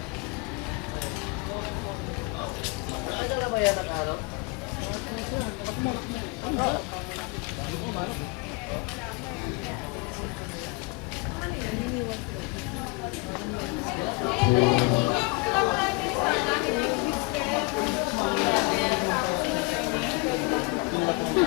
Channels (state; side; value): quieter; right; 26.7 dB